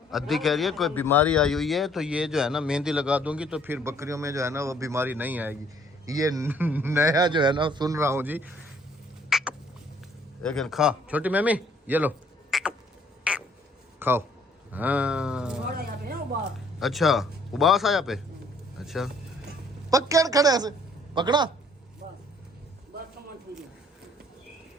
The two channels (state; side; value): normal; both; correlation 0.61